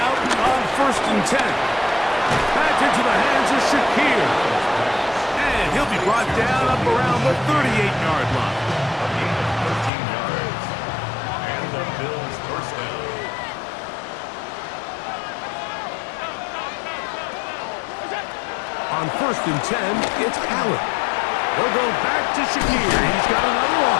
on 1st and 10. Back into the hands of Shakir. And he'll be brought down up around the 38-yard line. A gain of 13 yards. And the Bills first down. On 1st and 10, it's Allen. They'll go back to Shakir. He's got another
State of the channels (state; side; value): drops out; right; at 9.9 s